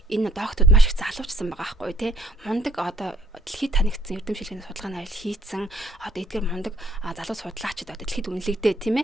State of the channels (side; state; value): both; normal; correlation 0.65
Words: доктод маш их залуучсан байгаа байхгүй те. Мундаг дэлхийд танигдсан эрдэм шилжээний судалгааны ажил хийцэн эдгээр мундаг залуу судлаачид дэлхийд үнэлэгдээ